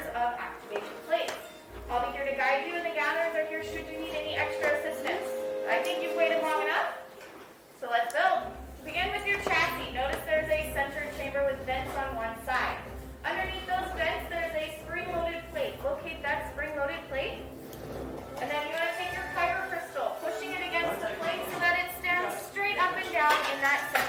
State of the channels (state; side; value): identical; both; correlation 1.00